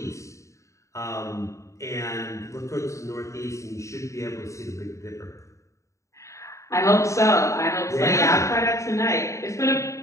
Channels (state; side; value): late; right; 0.15 ms